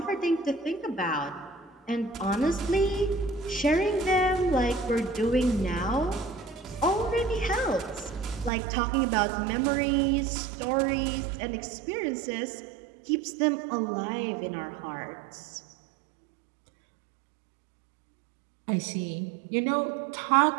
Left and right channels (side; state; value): left; drops out; at 8.5 s